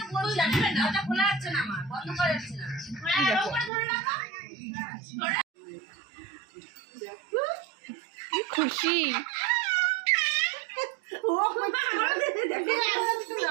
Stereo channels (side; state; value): left; drops out; at 3.7 s